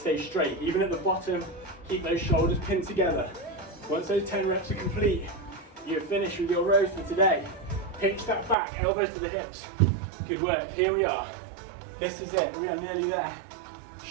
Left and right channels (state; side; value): drops out; left; at 8.6 s